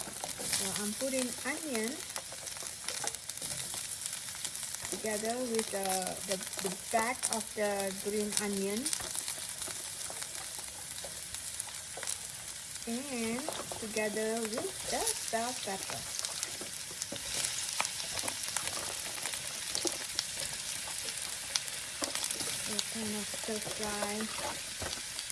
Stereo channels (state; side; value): identical; both; correlation 1.00